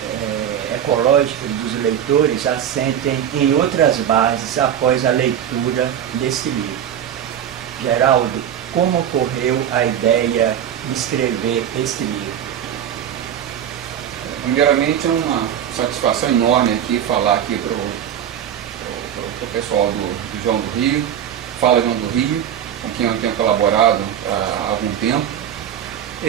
ecológicas dos leitores assentem em outras bases após a leitura desse livro. Geraldo, como ocorreu a ideia de escrever este livro? Primeiramente, é uma satisfação enorme aqui falar aqui para o pessoal do João do Rio, Fala João do Rio, com quem eu tenho colaborado há algum tempo.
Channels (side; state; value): left; quieter; 9.7 dB